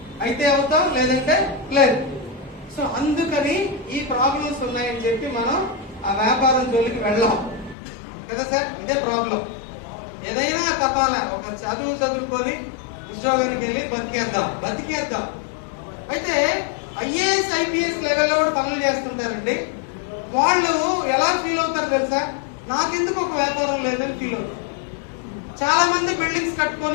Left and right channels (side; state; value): right; drops out; at 7.8 s